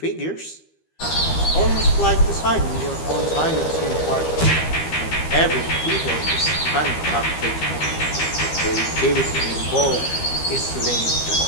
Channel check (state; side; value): late; right; 13 ms